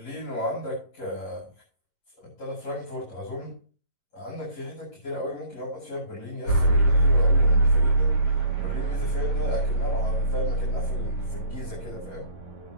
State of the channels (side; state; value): right; late; 11 ms